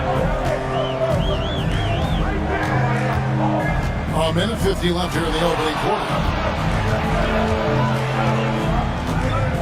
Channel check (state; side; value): identical; both; correlation 1.00